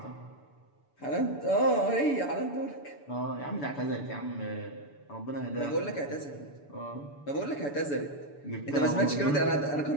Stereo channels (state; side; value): late; right; 6.9 ms